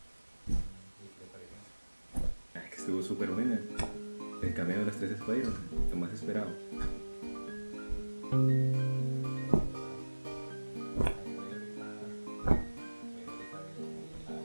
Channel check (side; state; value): both; inverted; correlation -1.00